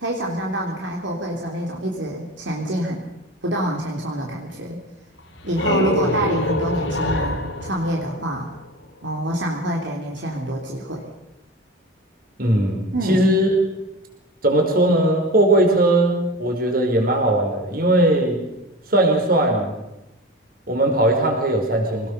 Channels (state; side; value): normal; both; correlation 0.30